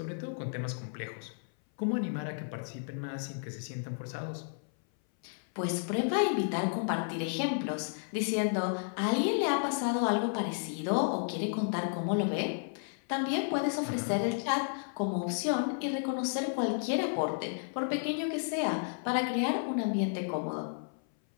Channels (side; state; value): right; silent; 56 dB below the other